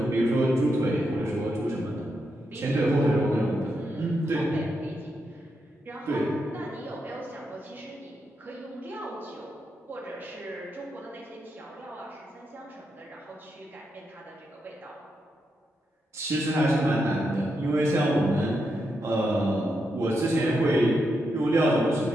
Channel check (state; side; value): normal; both; correlation 0.84